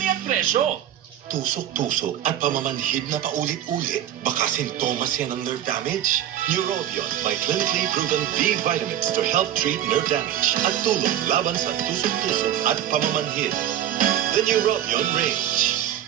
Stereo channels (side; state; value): left; quieter; 11.3 dB